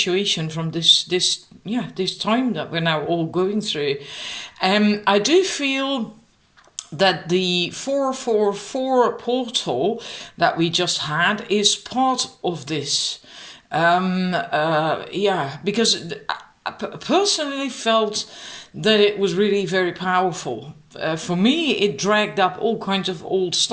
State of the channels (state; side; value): identical; both; correlation 1.00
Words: from this time that we're now all going through, I do feel that the 444 portal that we just had is part of this. Because I personally felt that it was really very powerful. For me, it dragged up all kinds of old